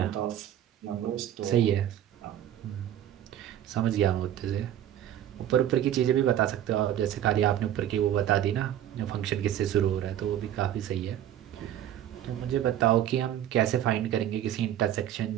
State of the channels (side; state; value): left; quieter; 11.3 dB